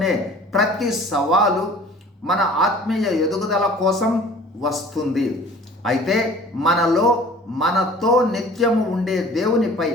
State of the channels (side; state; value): both; normal; correlation 0.48